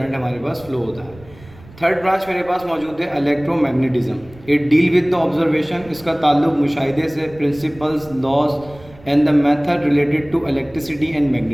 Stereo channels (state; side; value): noise; right; rumble, 22 dB below the sound